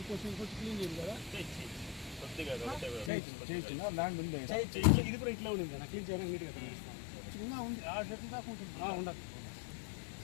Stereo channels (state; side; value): drops out; right; at 3.1 s